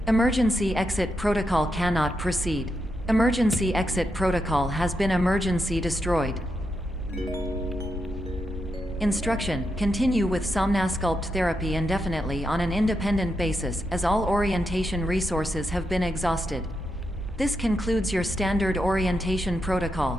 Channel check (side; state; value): both; normal; correlation 0.84